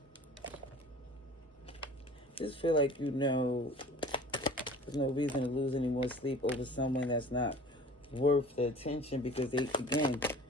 Just feel like, you know, there's no reason to lose any more sleep over someone that's not worth the attention, because they, again,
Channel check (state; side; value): normal; both; correlation 0.44